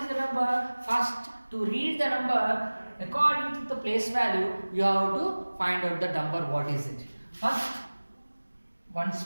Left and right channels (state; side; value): inverted; both; correlation -1.00